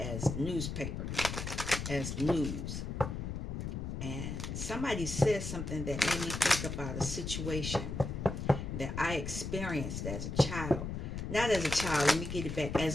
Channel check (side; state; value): left; noise; rumble, 4 dB below the sound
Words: newspaper, as news. And somebody said something that made me think about a situation that I experienced as a child. Not as a child, let me get it back,